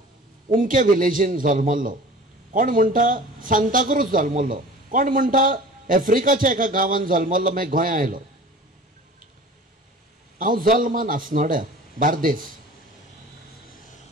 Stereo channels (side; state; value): both; normal; correlation 0.42